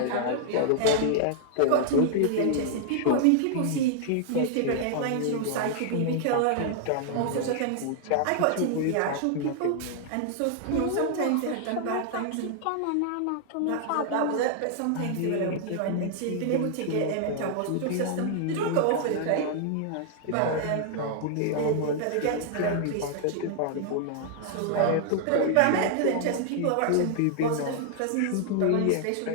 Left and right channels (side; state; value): both; different; correlation -0.01